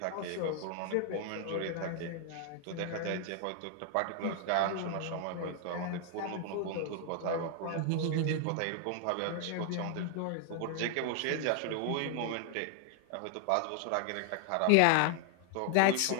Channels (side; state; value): both; different; correlation 0.00